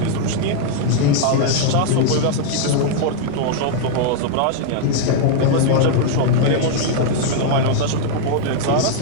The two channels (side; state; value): both; different; correlation -0.01